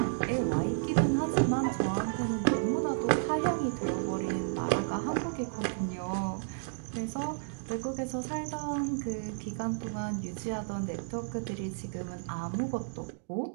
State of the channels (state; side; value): silent; left; digital silence